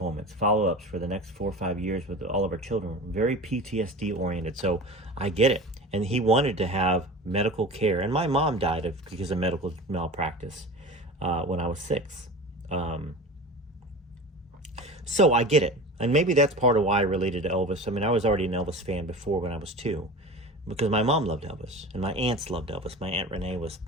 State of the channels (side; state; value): both; normal; correlation 0.34